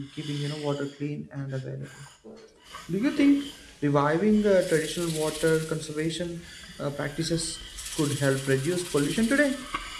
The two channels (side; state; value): both; identical; correlation 1.00